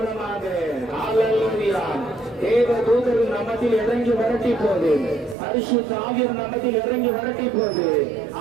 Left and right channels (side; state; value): left; drops out; at 5.4 s